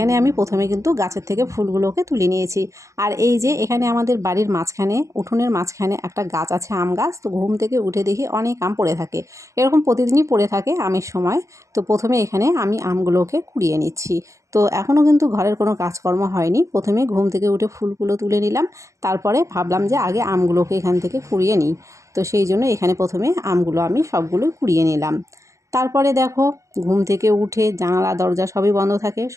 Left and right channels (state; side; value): late; left; 0.15 ms